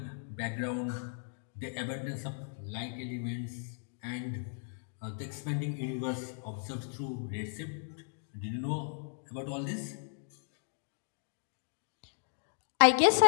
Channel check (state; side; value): silent; right; digital silence